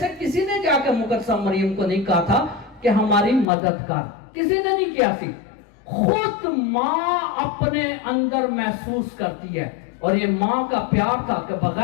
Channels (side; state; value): right; drops out; at 3.5 s